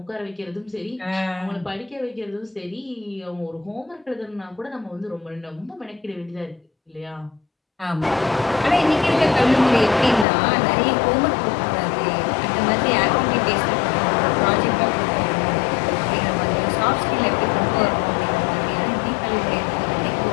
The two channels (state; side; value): drops out; right; at 10.2 s